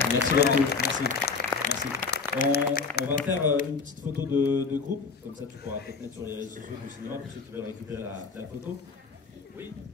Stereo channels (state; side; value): quieter; right; 4.9 dB